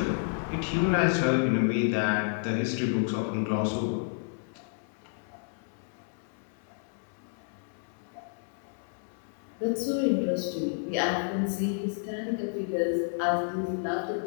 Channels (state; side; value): silent; right; digital silence